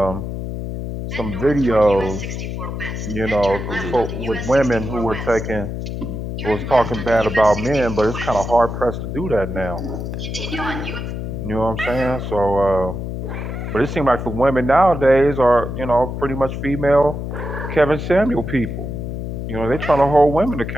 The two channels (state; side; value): noise; left; hum, 5 dB below the sound